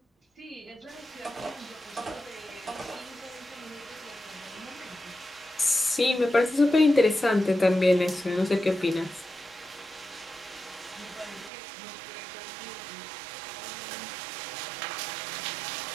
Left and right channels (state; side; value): drops out; left; at 11.5 s